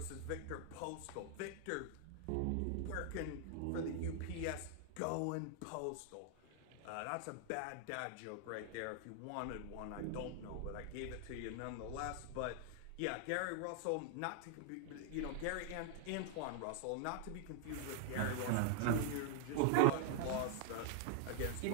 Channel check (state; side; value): different; both; correlation 0.00